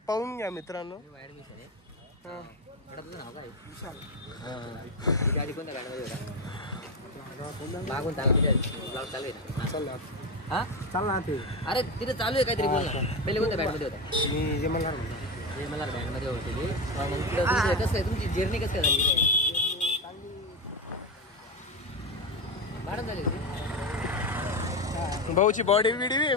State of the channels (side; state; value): both; normal; correlation 0.15